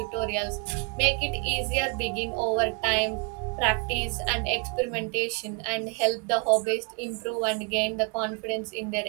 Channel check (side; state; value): left; quieter; 34.0 dB